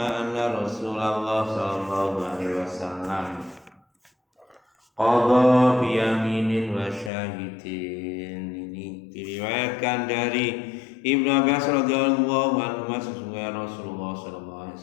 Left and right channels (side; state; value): right; drops out; at 7.1 s